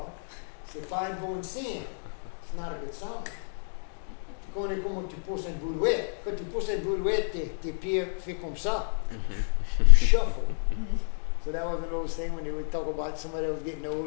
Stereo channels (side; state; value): right; silent; digital silence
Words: c'est pas un bon signe. It's not a good sign. Tu connais comment tu pousses une brouette. Quand tu pousses une brouette, tes pieds font comme ça. You shuffle. So that was one of those things when they would talk about somebody that was getting